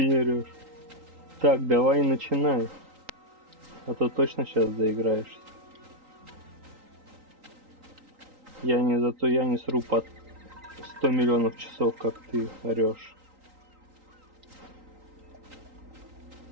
орешь. Так, давай начинай. А то точно сейчас доиграешься. Зато я не сру под 100 миллионов часов, как ты орешь.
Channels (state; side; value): late; left; 3.8 ms